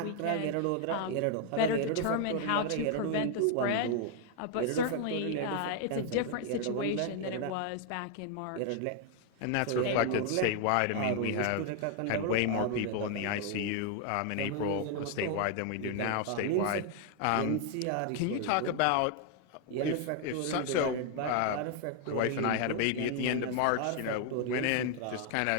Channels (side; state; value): both; different; correlation 0.00